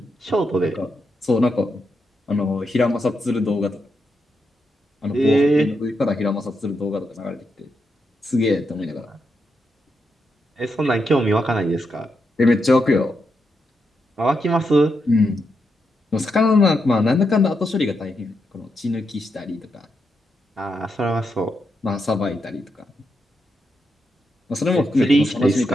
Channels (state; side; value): normal; both; correlation 0.83